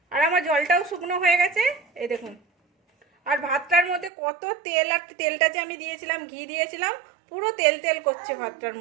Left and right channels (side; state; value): left; drops out; at 4.1 s